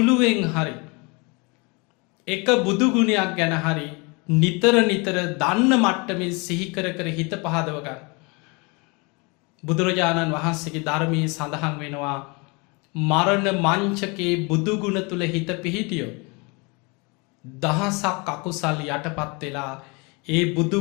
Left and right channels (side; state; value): right; quieter; 29.3 dB